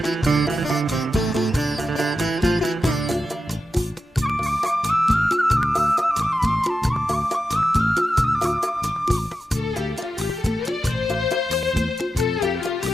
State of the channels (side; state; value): both; normal; correlation 0.89